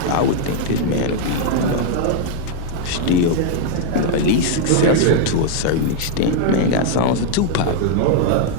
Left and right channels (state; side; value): different; both; correlation 0.00